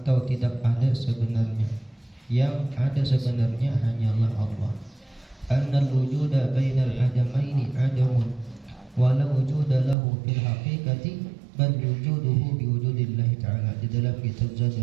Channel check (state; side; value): drops out; left; at 10.0 s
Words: tidak ada sebenarnya. Yang ada sebenarnya hanyalah Allah. Annal wujuda bainal adamaini adamun wala wujuda lahu fil haqiqati bal wujuduhu biwujudillahi ta'ala, di dalam kitab